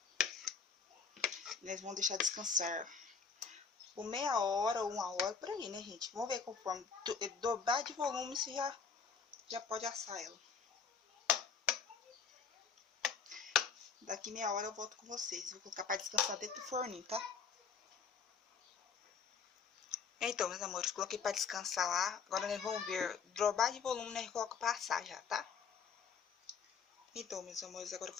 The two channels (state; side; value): quieter; right; 5.9 dB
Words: Nós vamos deixar descansar por meia hora ou 1 hora, por aí, né, gente? Vamos ver conforme dobrar de volume, você já pode assar ela. Daqui meia hora eu volto com vocês. Vou colocar para descansar dentro do forninho, tá? Então, meus amores, coloquei pra descansar lá. Agora nós vamos ver. Drobar de volume, nós coloca pra assar já, tá? Então, meus amores, agora eu